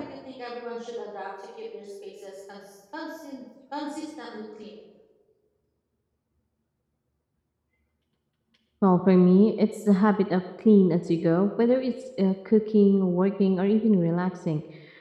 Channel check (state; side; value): identical; both; correlation 1.00